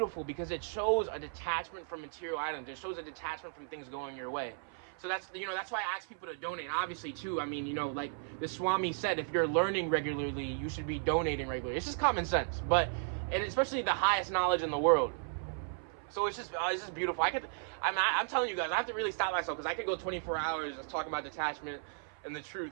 because it shows a detachment from material items. It shows a detachment from things going your way. So that's why I ask people to donate. Obviously, too, I mean, like the Swami said, if you're learning regularly, you should be donating regularly. It's just common sense, and especially the highest knowledge in the world. So it's just beautiful. I'm telling you guys, I have to really stop myself, because I could go 24 hours just talking about detachment and the truth.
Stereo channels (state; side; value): silent; left; 54 dB below the other